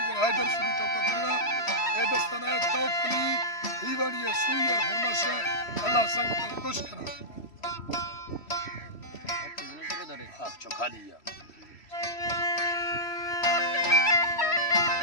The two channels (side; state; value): right; late; 3.1 ms